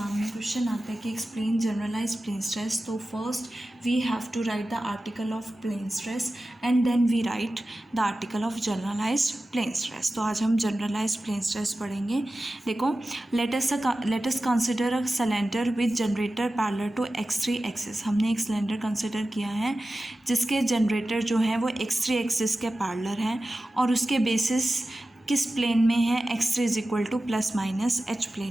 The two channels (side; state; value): both; normal; correlation 0.94